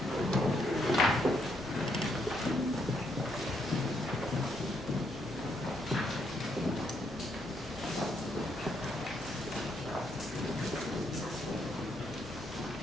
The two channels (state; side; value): normal; both; correlation 0.75